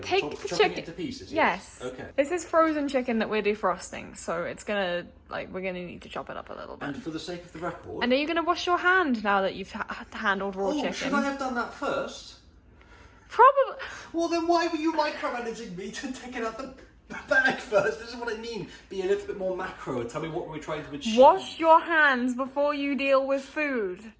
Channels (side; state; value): both; identical; correlation 1.00